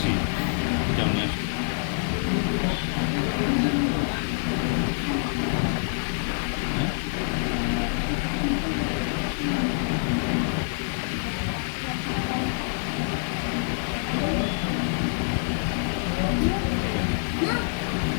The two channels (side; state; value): right; silent; digital silence